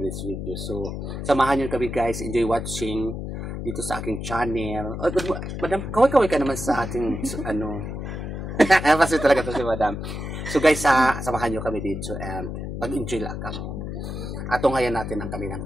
video. So, samahan nyo kami, guys. Enjoy watching dito sa aking channel. Oh, Madam, kaway-kaway ka naman sa ating, ano. Kasi talaga to si Madam. So, guys, samahan nyo kami dito and mag-enjoy lang kami. Atunghayan natin ang kanilang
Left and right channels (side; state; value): left; noise; hum, 6 dB below the sound